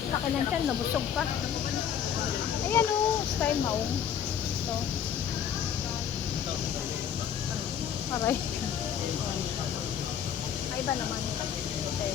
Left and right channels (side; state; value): right; quieter; 8.8 dB